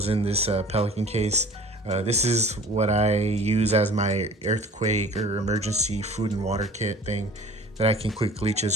in this Pelican case. This is what I use as my earthquake or emergency food and water kit thing that I can quickly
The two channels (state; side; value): normal; both; correlation 0.46